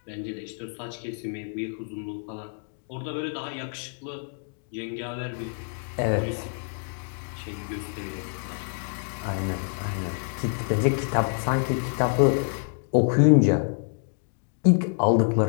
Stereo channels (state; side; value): silent; right; 57 dB below the other